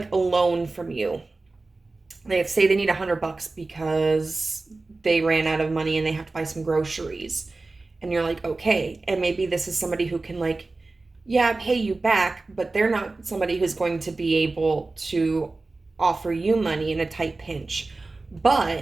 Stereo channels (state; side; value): quieter; left; 3.4 dB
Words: a loan from you. They say they need $100 because they ran out of money and they have to buy some groceries. And you're like, okay. And maybe this is somebody who can, like, yeah, pay you back, but they're not somebody who's going to be able to offer you money in a tight pinch.